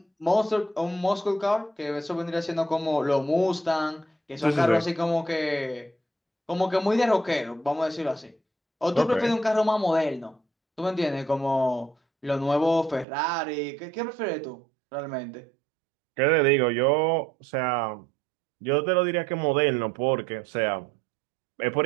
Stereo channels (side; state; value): left; drops out; at 13.1 s